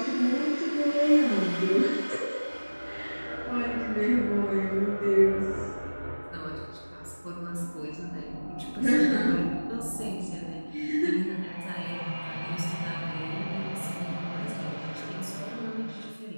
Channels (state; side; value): inverted; both; correlation -1.00